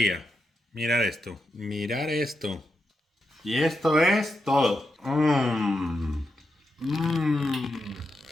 Mirar esto. Mirar esto. Y esto es todo.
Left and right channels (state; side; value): normal; both; correlation 0.86